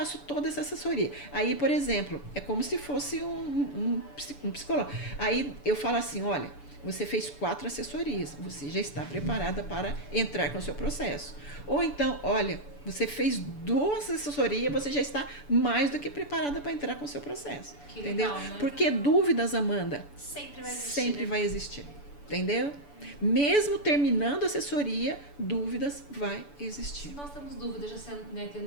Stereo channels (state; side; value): late; right; 6.9 ms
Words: toda essa assessoria. Aí, por exemplo, é como se fosse um psicólogo. Aí eu falo assim: olha, você fez 4 assessorias, você já está preparada para entrar com o seu processo. Ou então, olha, você fez 2 assessorias, você já está mais do que preparada para entrar com o seu processo. Que entendeu? Legal, né? Porque dúvidas, Amanda, sempre vai existir. Sempre vai existir. Entendeu? Mesmo terminando a assessoria, dúvidas vai existir. Se nós temos dúvidas, já sendo, né,